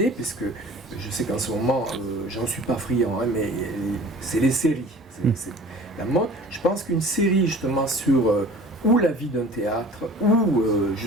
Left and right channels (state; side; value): normal; both; correlation 0.45